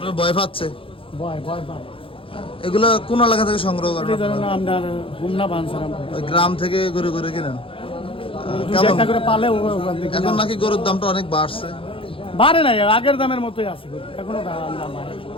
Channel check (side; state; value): right; late; 0.26 ms